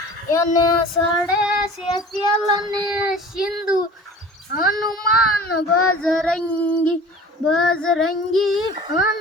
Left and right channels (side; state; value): both; normal; correlation 0.42